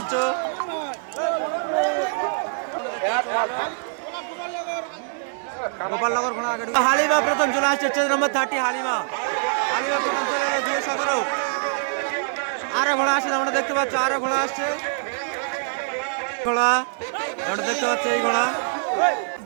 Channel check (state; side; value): silent; left; digital silence